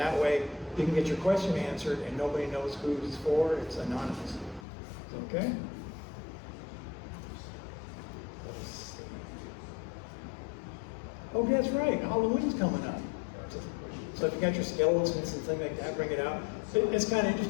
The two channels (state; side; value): drops out; right; at 4.7 s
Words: way you can get your question answered and nobody knows who it's for. It's anonymous. Okay? Let's see. Oh, that's right. Halloween's coming up. So if you got your skeletons and things like that, bring it out. It's kind of